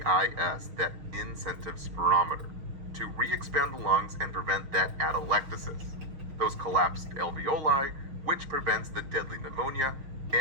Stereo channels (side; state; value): left; late; 6.4 ms